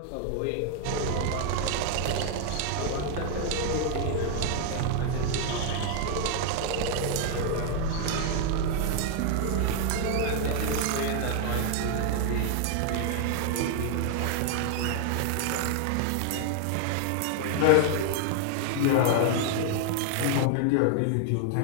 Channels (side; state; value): both; different; correlation 0.00